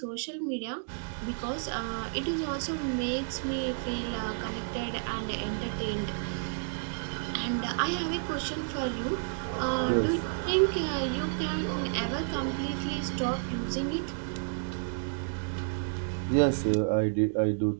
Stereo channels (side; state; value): left; silent; digital silence